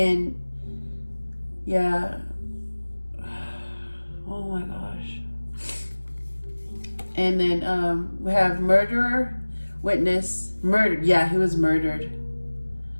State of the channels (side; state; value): both; inverted; correlation -1.00